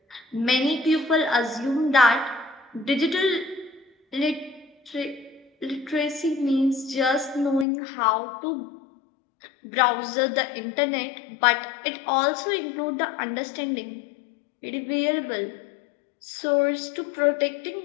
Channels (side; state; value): right; drops out; at 7.7 s